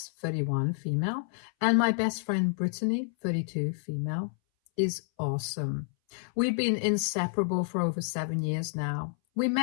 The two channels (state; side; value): silent; right; 58 dB below the other